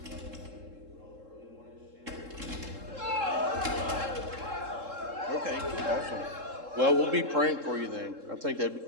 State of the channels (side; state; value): left; late; 3.7 ms